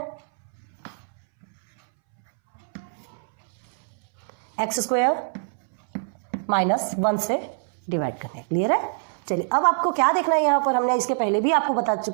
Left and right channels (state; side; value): silent; left; 62 dB below the other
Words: x² - 1 से डिवाइड करना है। क्लियर है, चलिए अब आपको क्या देखना है, यहाँ पर हमने इसके पहले भी आपको बता